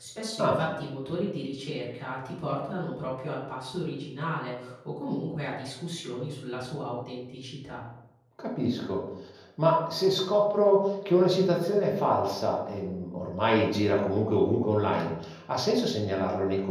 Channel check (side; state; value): both; identical; correlation 1.00